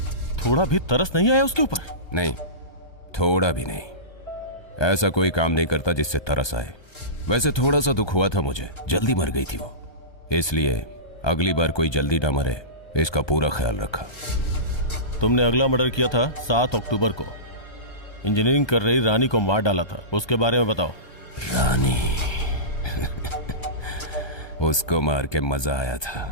थोड़ा भी तरस नहीं आया उसके ऊपर? नहीं, थोड़ा भी नहीं। ऐसा कोई काम नहीं करता जिससे तरस आए। वैसे थोड़ा सा दुख हुआ था मुझे, जल्दी मर गई थी वो, इसलिए अगली बार कोई जल्दी ना मरे इसका पूरा ख्याल रखा। तुमने अगला मर्डर किया था 7 अक्टूबर को, इंजीनियरिंग कर रही रानी को मार डाला था, उसके बारे में बताओ। रानी उसको मार के मजा आया था,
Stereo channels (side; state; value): right; late; 1.2 ms